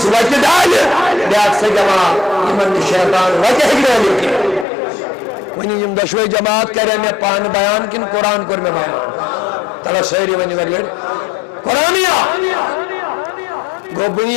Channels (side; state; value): right; drops out; at 4.7 s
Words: وجہ ڈال بیاکسا جماعت یمن شیطان وجہ ہگرے لکے ونی یم دشوئی جماعت کرے میں پان بیان کن قرآن کر میں بیان تلا شہری ونی ورلڈ قرآنیا گو